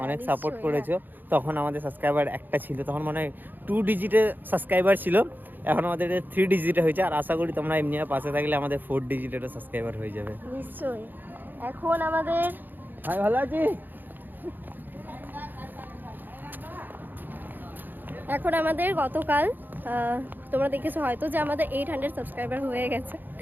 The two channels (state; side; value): late; left; 0.089 ms